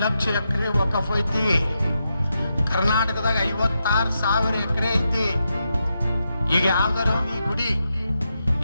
ಲಕ್ಷ ಎಕರೆ ವಕಫ್ ಐತಿ. ಕರ್ನಾಟಕದಾಗ 56,000 ಎಕರೆ ಐತಿ. ಈಗ ಯಾವ್ದಾರ ಈ ಗುಡಿ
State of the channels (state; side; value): inverted; both; correlation -0.85